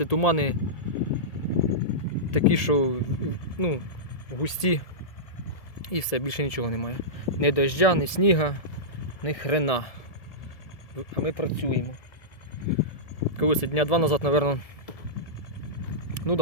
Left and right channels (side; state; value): right; late; 1.7 ms